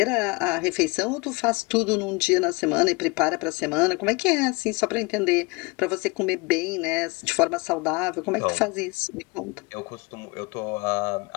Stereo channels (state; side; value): quieter; right; 26.9 dB